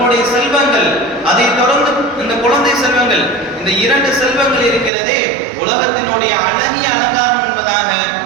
செல்வங்கள், அதை தொடர்ந்து இந்த குழந்தை செல்வங்கள், இந்த 2 செல்வங்கள் இருக்கிறதே உலகத்தினுடைய அழகிய அலங்காரம் என்பதாக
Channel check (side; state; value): left; drops out; at 4.9 s